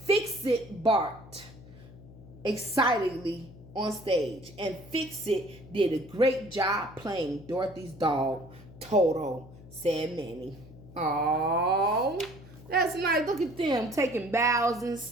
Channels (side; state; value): left; noise; hum, 19 dB below the sound